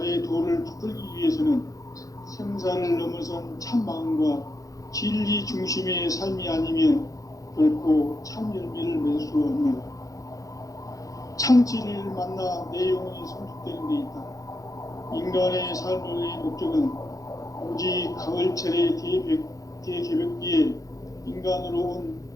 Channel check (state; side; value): late; right; 0.17 ms